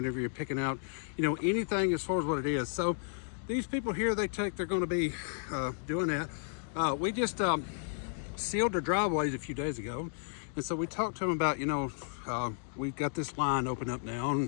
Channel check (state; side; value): silent; right; digital silence